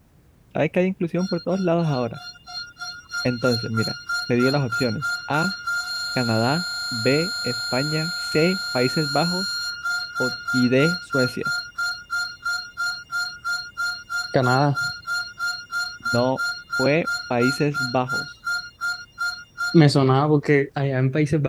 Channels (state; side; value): identical; both; correlation 1.00